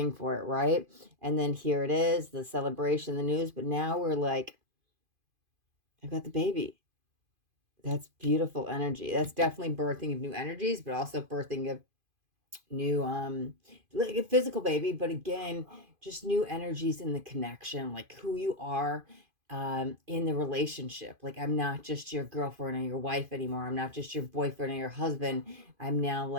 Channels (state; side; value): late; left; 2.5 ms